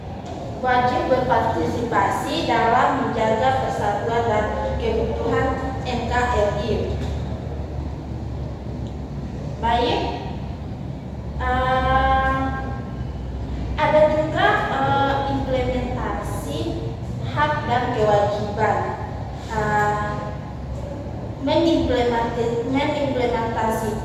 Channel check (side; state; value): both; identical; correlation 1.00